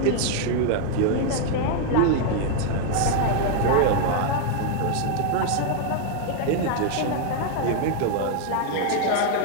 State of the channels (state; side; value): different; both; correlation 0.00